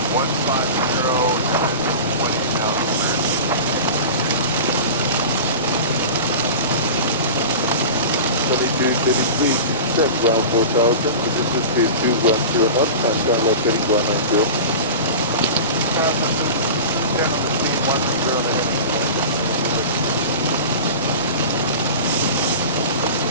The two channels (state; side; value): inverted; both; correlation -0.31